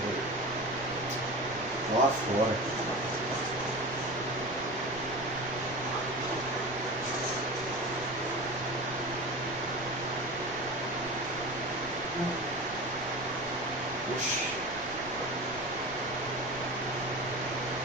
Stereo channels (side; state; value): right; noise; rumble, 18 dB below the sound